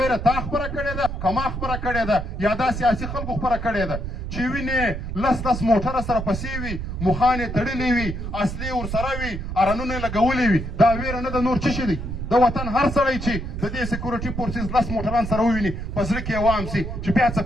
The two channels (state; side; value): noise; right; rumble, 6 dB below the sound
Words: تا خپره کړې ده که ما خپره کړې ده یا دا سیاسي خلکو خپره کړې ده چې وینې لس موټره سره پسې وي مخان یې تړلې وي اصلي ورسره وي ارنونه یې لګولې وي دا ویره نه ده نور څه شي دی د وطن هر سړی چې د دې سکیورټي فورسز 10 موټران سره وویني په زړه کې یې وام سي چې بیا څه